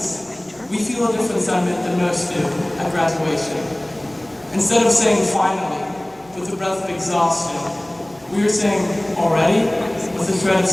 we feel a different sentiment than most do at graduation. Instead of saying finally, with a breath of exhaustion, we are saying already, with a shred of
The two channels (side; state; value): right; noise; rumble, 27 dB below the sound